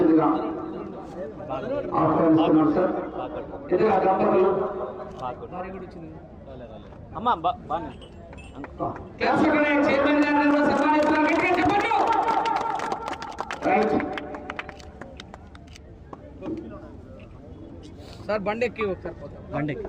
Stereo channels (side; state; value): both; identical; correlation 1.00